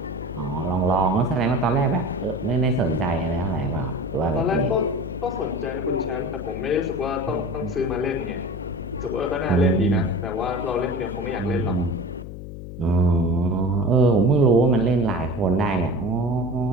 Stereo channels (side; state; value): left; noise; hum, 11 dB below the sound